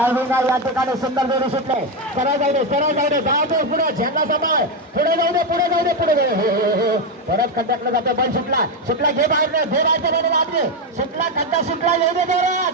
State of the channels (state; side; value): normal; both; correlation 0.07